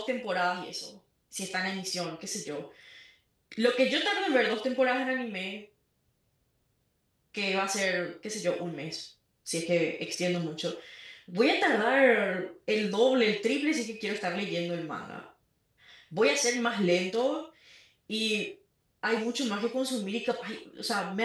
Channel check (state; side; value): identical; both; correlation 1.00